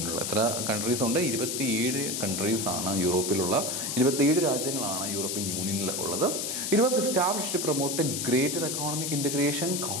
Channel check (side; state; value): left; noise; hiss, 2 dB below the sound